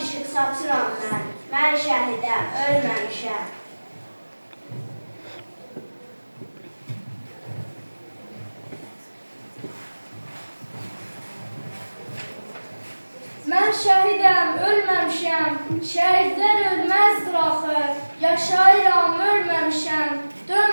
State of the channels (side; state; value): both; inverted; correlation -1.00